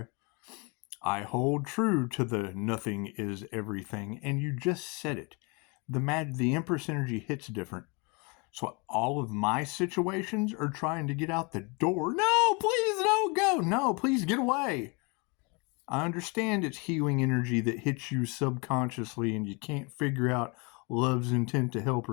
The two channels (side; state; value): right; quieter; 30.5 dB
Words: I hold true to the nothing is everything, and you just said it. The Empress energy hits different. So all of my situations are trying to get out the door. No, please don't go. No, please get away. I understand it's healing energy that hits you subconsciously and you can't figure out love's intent to help